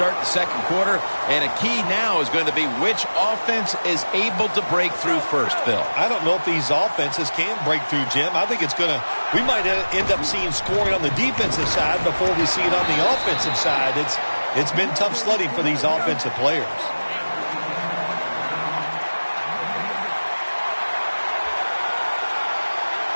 the second quarter, and a key now is going to be which offense is able to break through first, Phil. I don't know if these offenses can break through, Jim. I think we might end up seeing scoring on the defensive side before we see it on the offensive side. It's been tough sledding for these offensive players.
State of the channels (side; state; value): both; inverted; correlation -1.00